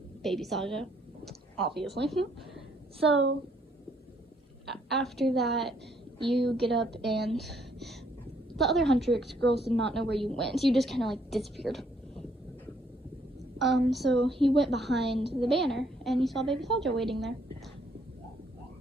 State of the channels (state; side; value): normal; both; correlation 0.68